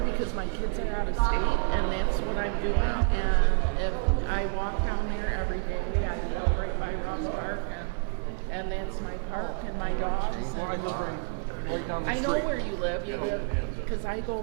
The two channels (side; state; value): left; quieter; 37.0 dB